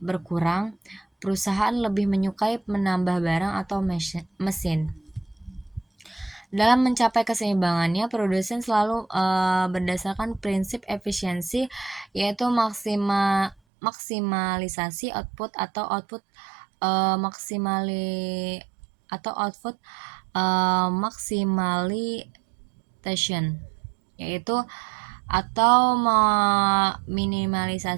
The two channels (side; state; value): left; drops out; at 13.6 s